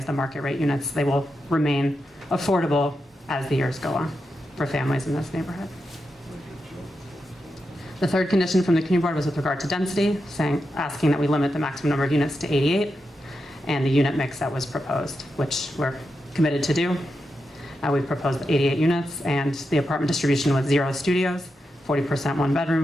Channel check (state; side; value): normal; both; correlation 0.87